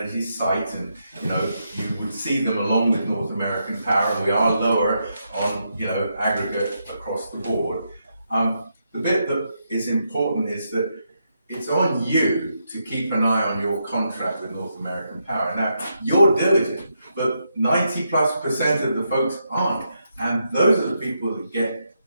Energy site, and you know you would see them along with North American Power. We are lower on aggregate across the board. The bit that is important is that it's on you to keep an eye on your contract with North American Power. Now you're diligent, but 90+% of the folks aren't. And those are the people that get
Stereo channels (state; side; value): inverted; both; correlation -0.82